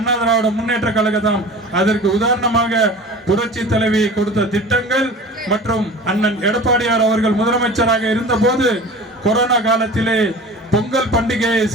திராவிட முன்னேற்ற கழகம். அதற்கு உதாரணமாக புரட்சி தலைவி கொடுத்த திட்டங்கள் மற்றும் அண்ணன் எடப்பாடியார் அவர்கள் முதலமைச்சராக இருந்த போது கொரோனா காலத்திலே பொங்கல் பண்டிகையை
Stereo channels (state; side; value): normal; both; correlation 0.38